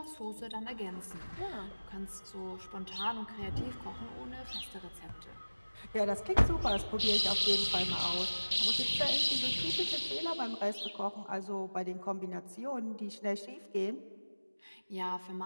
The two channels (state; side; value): inverted; both; correlation -1.00